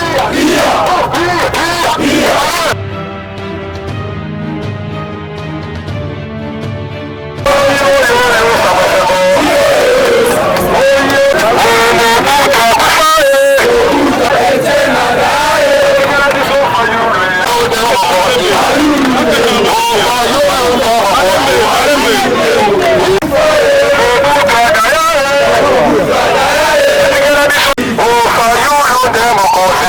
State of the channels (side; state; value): both; identical; correlation 1.00